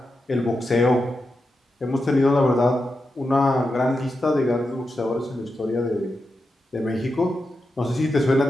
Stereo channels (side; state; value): both; normal; correlation 0.88